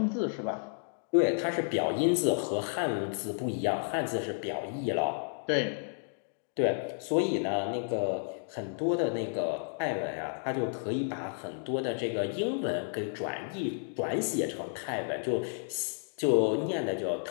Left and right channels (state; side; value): silent; right; digital silence